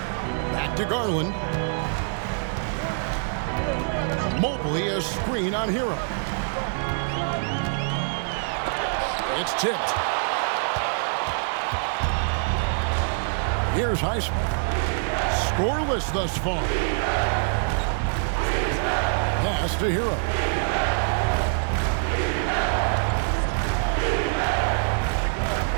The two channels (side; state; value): left; silent; digital silence